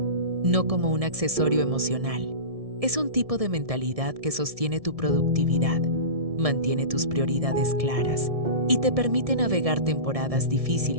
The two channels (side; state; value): left; late; 1.7 ms